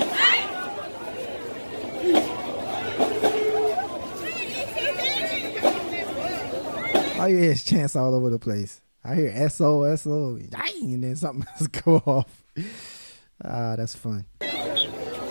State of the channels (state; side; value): inverted; both; correlation -1.00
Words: All you hear is chants all over the place. I hear SO, SO, and then something else go off. That's fun.